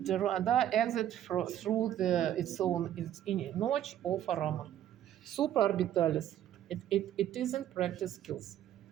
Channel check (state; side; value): quieter; left; 11.4 dB